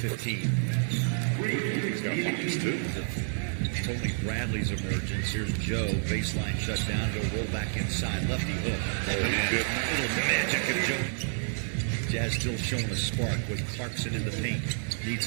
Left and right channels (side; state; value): left; silent; 58 dB below the other